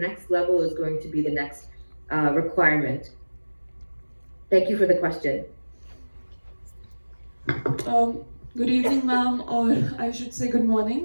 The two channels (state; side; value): inverted; both; correlation -1.00